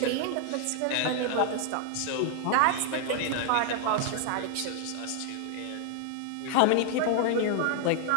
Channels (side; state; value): both; different; correlation 0.00